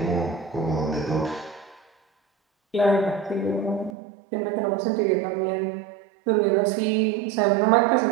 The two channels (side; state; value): left; drops out; at 3.9 s